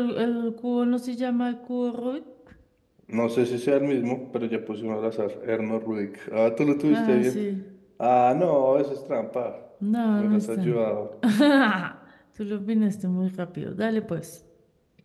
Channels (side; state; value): both; identical; correlation 1.00